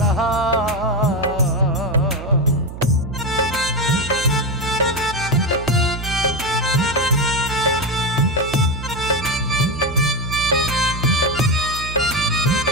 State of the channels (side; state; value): right; noise; hum, 11 dB below the sound